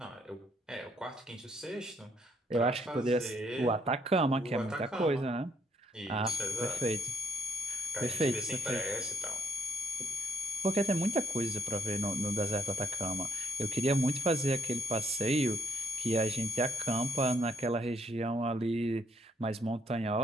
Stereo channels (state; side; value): normal; both; correlation 0.72